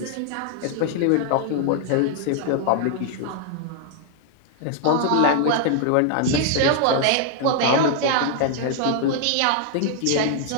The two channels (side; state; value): both; different; correlation -0.01